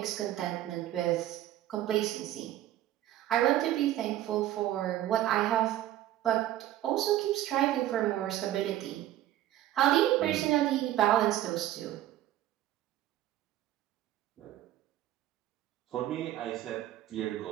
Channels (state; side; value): quieter; left; 13.7 dB